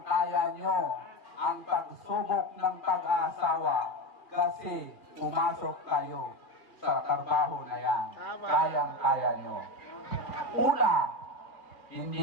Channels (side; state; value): right; late; 2.5 ms